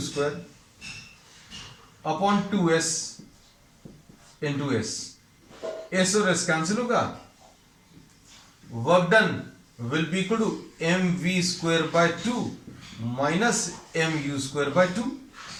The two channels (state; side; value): identical; both; correlation 1.00